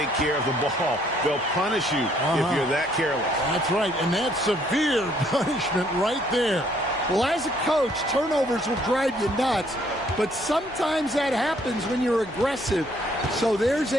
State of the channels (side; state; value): left; noise; hum, 23 dB below the sound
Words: care of the ball. They'll punish you if you're that careless. That's right, and that's severe punishment right there. Well, as a coach, turnovers will drive you nuts, but sometimes that happens when you're aggressive. So there's